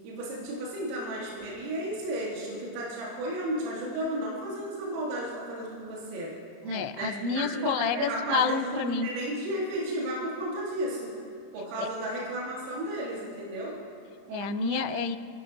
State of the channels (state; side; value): late; left; 29 ms